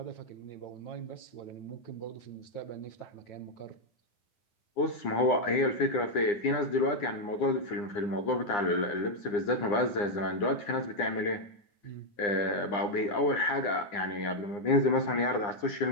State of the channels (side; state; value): right; late; 9.8 ms